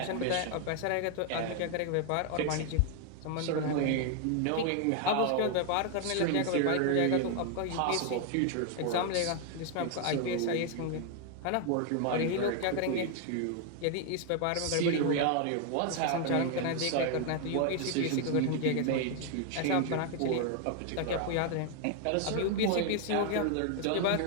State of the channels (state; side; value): different; both; correlation 0.00